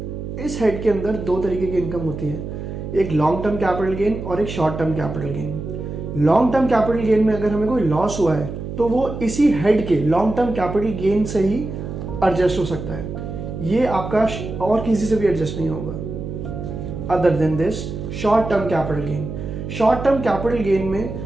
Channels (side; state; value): right; noise; hum, 7 dB below the sound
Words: इस हेड के अंदर दो तरीके की इनकम होती है, एक लॉन्ग टर्म कैपिटल गेन और एक short term capital gain. Long term capital gain में अगर हमें कोई लॉस हुआ है तो वो इसी हेड के लॉन्ग टर्म कैपिटल गेन से ही एडजस्ट हो सकता है, ये आपका और किसी से भी एडजस्ट नहीं होगा। Other than this short term capital gain, short term capital gain